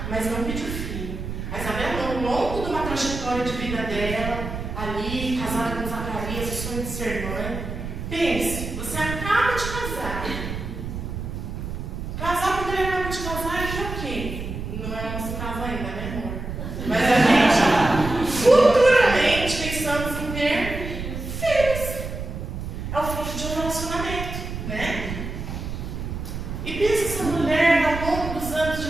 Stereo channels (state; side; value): noise; right; rumble, 6 dB below the sound